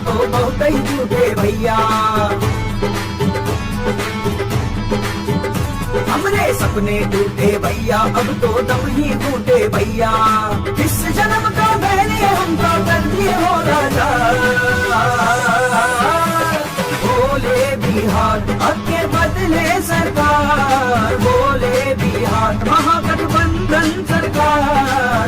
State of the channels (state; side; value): identical; both; correlation 1.00